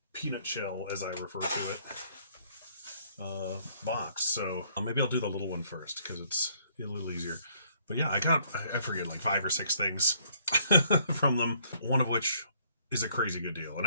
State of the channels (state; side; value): inverted; both; correlation -0.65